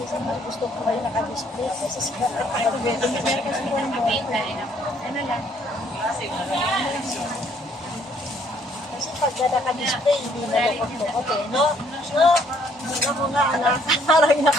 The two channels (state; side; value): normal; both; correlation 0.65